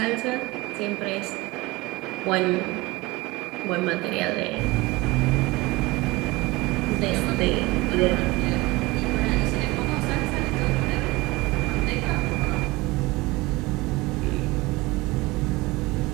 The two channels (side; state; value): left; quieter; 21.8 dB